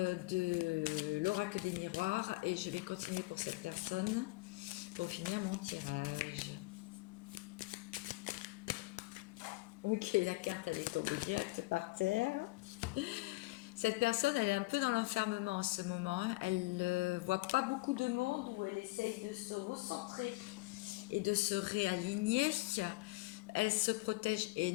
l'oracle des miroirs et je vais continuer pour cette personne pour finir mon tirage. Ok, la carte elle est tombée direct par terre. Cette personne elle est un peu dans l'enfermement en ce moment. Elle ne voit pas beaucoup de monde où elle essaye de se recentrer et de se réaligner. Elle se protège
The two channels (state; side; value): quieter; right; 22.9 dB